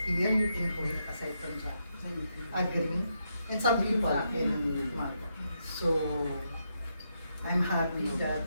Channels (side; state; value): both; inverted; correlation -0.81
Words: here in Kuwait, aside from Jack, agreeing, and some people in Malta. So, I'm happy that